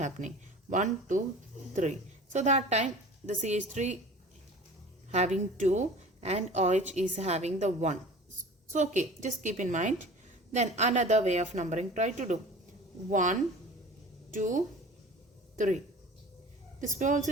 1, 2, 3. So that time the CH3 having 2 and OH is having the 1. So okay, just keep in mind. Then another way of numbering try to do. 1, 2, 3. This way also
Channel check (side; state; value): both; normal; correlation 0.41